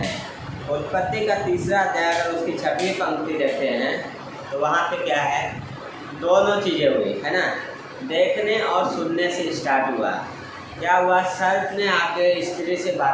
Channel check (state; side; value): identical; both; correlation 1.00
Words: उत्पत्ति का 3रा अध्याय अगर उसकी 6वीं पंक्ति देखते हैं तो वहाँ पे क्या है, दोनों चीज़ें हुई, है ना। देखने और सुनने से स्टार्ट हुआ। क्या हुआ, सर्प ने आके स्त्री से